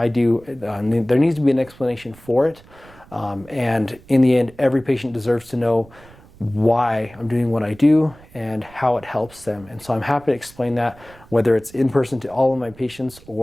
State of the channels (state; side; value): noise; right; rumble, 24 dB below the sound